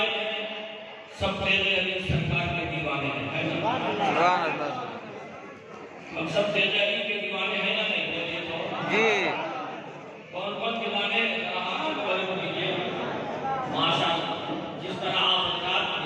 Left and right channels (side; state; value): both; identical; correlation 1.00